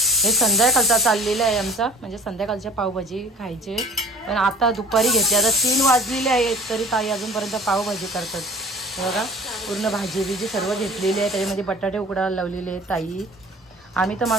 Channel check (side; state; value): both; normal; correlation 0.46